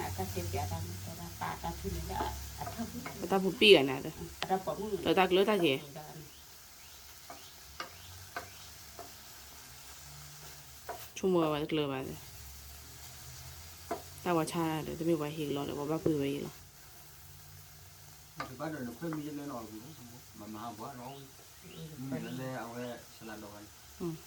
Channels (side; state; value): both; identical; correlation 1.00